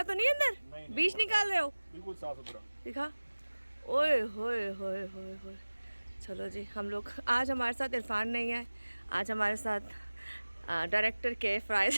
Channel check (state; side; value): inverted; both; correlation -1.00